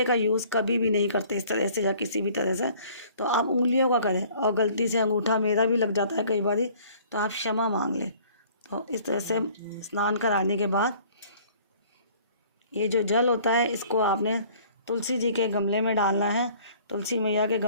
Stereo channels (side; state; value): both; inverted; correlation -0.54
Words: का यूज़ कभी भी नहीं करते इस तरह से या किसी भी तरह से। तो आप उंगलियों का करें, और गलती से अंगूठा मेरा भी लग जाता है कई बार, तो आप क्षमा मांग लें। तो इस तरह से स्नान कराने के बाद ये जो जल होता है, इसको आपने तुलसी जी के गमले में डालना है। तुलसी मैया के